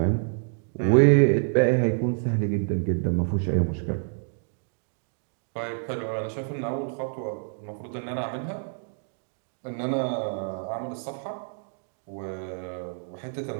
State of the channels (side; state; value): left; silent; digital silence